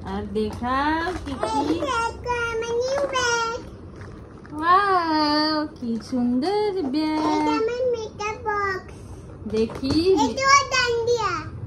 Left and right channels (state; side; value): identical; both; correlation 1.00